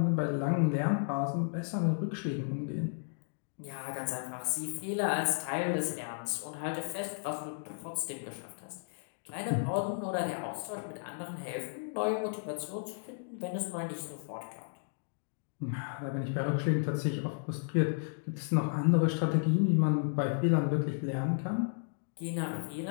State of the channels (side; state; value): right; silent; digital silence